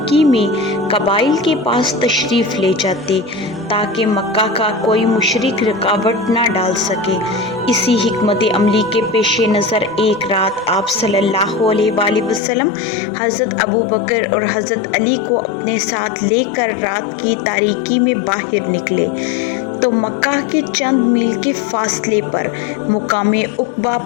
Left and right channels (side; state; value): right; drops out; at 12.4 s